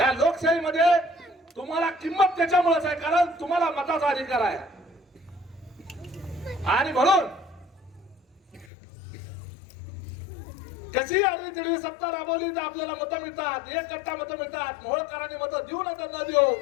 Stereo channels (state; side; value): drops out; right; at 8.7 s